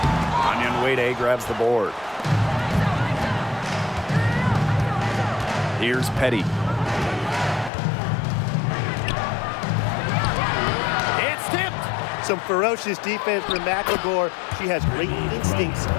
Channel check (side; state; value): right; drops out; at 7.7 s